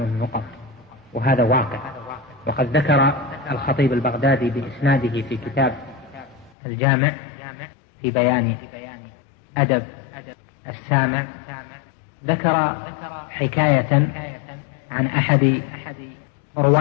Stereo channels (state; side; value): drops out; right; at 6.5 s